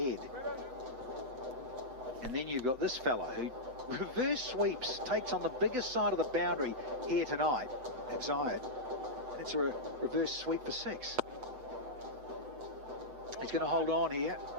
And then you've got this fella who reverse sweeps, takes on the biggest side of the boundary here tonight at Zayed. And it's a reverse sweep for 6. He's going to hold on here.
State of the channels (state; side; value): late; left; 7.9 ms